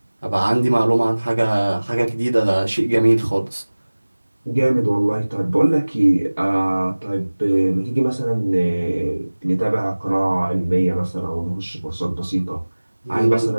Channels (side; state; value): both; inverted; correlation -1.00